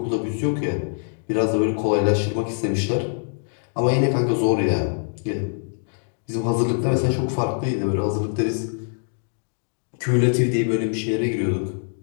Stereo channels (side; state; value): right; silent; digital silence